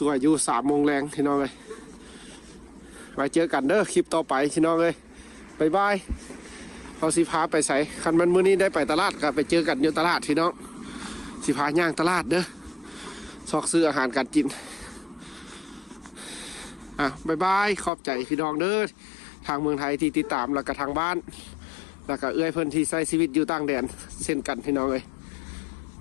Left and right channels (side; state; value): right; drops out; at 17.9 s